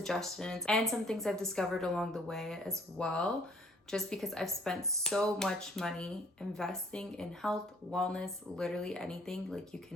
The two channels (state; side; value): normal; both; correlation 0.59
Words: and some things I've discovered along the way as well, just because I've spent so much money investing in health, wellness, literally anything, like you